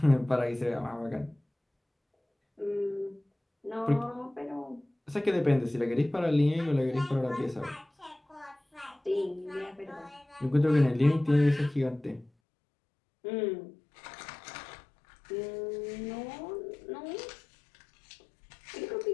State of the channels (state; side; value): drops out; right; at 12.3 s